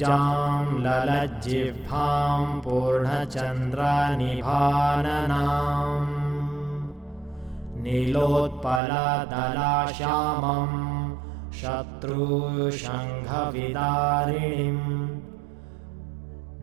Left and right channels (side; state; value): left; drops out; at 8.8 s